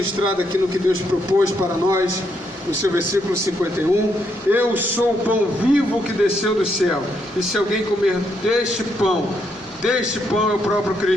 aqui no que Deus propôs para nós, no seu versículo 51. Eu sou o pão vivo que desceu do céu, e se alguém comer deste pão é o próprio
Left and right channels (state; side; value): normal; both; correlation 0.77